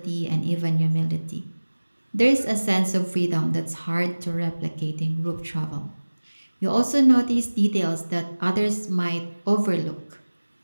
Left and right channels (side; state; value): both; inverted; correlation -1.00